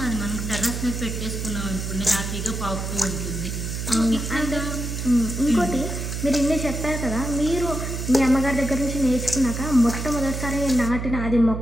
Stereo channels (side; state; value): right; noise; hum, 4 dB below the sound